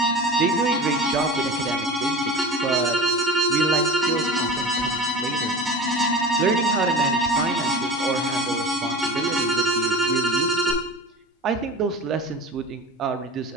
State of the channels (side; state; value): both; normal; correlation 0.34